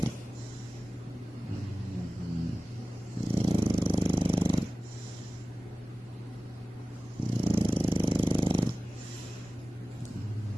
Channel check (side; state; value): both; normal; correlation 0.96